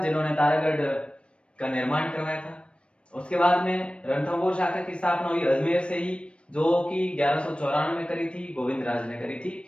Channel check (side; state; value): right; late; 0.059 ms